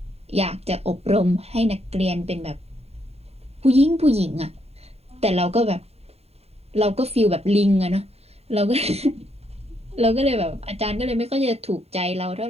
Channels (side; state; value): left; late; 0.30 ms